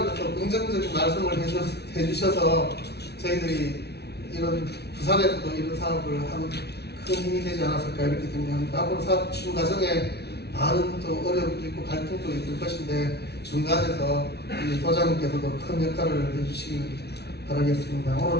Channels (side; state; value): right; late; 0.48 ms